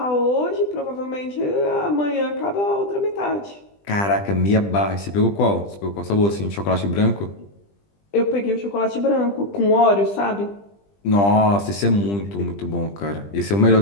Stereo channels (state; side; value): late; right; 20 ms